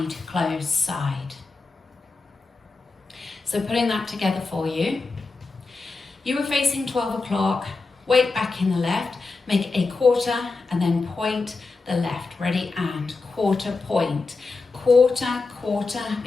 close, side. So putting that together for you, you were facing 12 o'clock, weight back in the left, make a quarter and then point the left. Ready, and quarter, point. Quarter, quarter,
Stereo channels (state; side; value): quieter; right; 4.0 dB